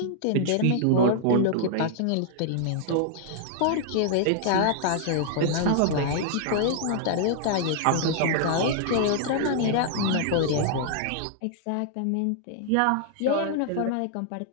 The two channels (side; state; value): both; different; correlation -0.01